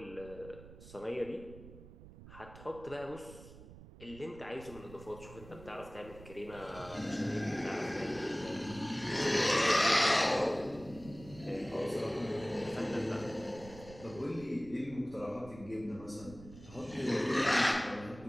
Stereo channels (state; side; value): noise; right; rumble, 17 dB below the sound